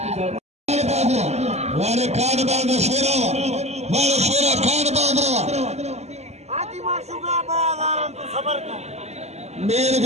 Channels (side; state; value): left; late; 0.32 ms